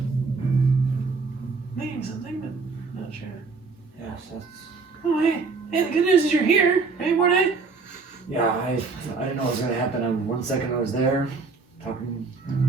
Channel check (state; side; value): quieter; left; 4.3 dB